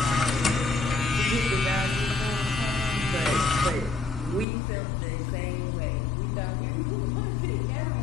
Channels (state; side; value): drops out; right; at 4.5 s